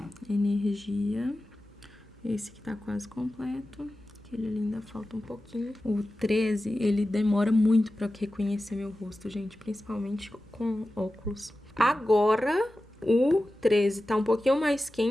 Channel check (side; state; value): both; normal; correlation 0.94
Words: energia. Esse aqui tá quase completo. Aquele ali ainda falta um pouquinho. O 13, ele demora muito pra reconhecer meu rosto, gente. Principalmente com óculos. Agora, o 13 tá um pouquinho mais